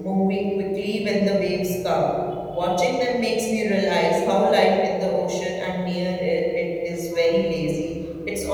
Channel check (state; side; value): identical; both; correlation 1.00